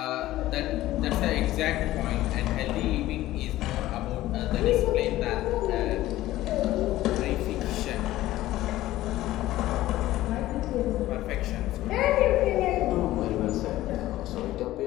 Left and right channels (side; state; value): right; quieter; 15.6 dB